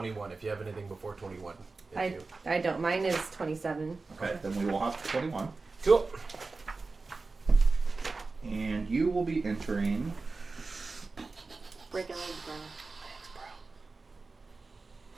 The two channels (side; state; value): left; quieter; 3.9 dB